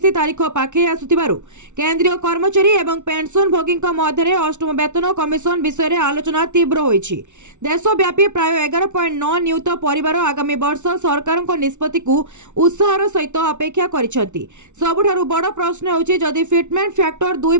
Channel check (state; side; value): late; left; 0.84 ms